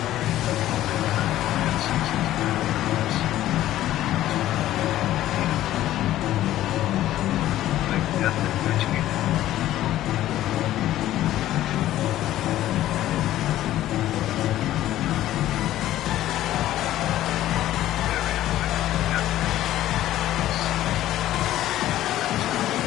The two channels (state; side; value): quieter; right; 13.8 dB